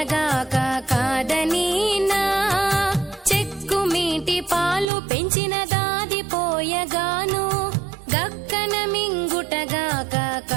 కాదనీనా. చెక్కుమీటి పాలు పెంచిన దాది పోయగాను గక్కన మింగుటగాక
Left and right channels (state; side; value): drops out; left; at 4.9 s